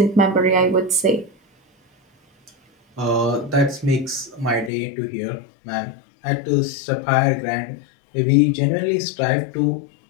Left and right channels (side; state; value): right; drops out; at 4.7 s